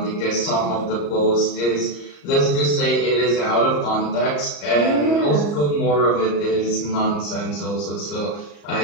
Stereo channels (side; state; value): right; late; 34 ms